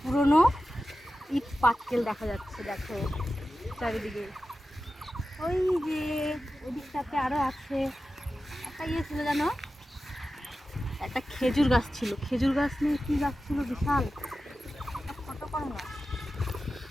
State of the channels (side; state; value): both; normal; correlation 0.93